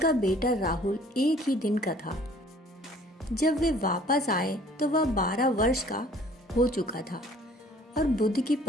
बेटा राहुल एक ही दिन का था। जब वे वापस आए तो वह 12 वर्ष का हो चुका था और बुद्ध की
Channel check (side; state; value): both; normal; correlation 0.54